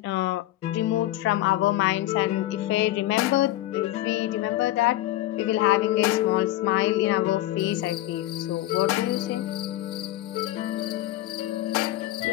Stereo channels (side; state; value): right; quieter; 15.2 dB